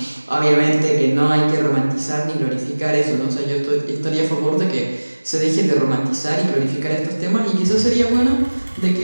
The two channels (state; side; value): inverted; both; correlation -1.00